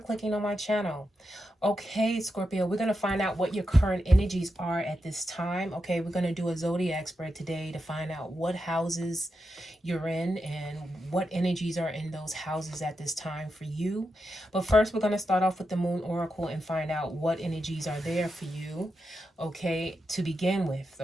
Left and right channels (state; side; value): normal; both; correlation 0.87